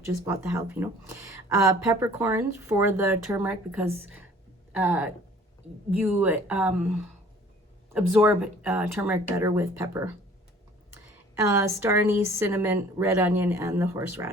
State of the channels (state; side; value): normal; both; correlation 0.52